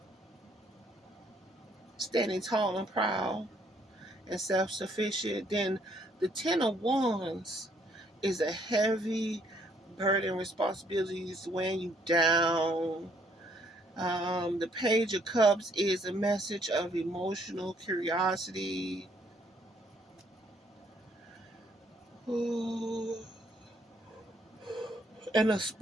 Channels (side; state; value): both; normal; correlation 0.67